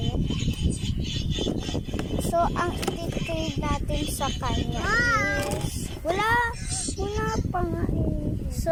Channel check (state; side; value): identical; both; correlation 1.00